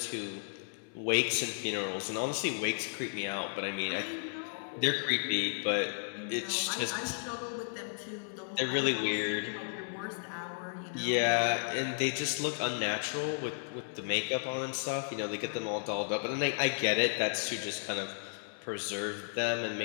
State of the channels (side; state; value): right; silent; 55 dB below the other